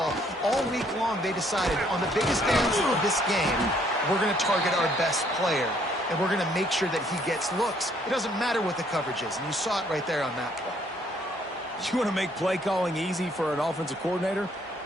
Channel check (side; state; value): both; normal; correlation 0.65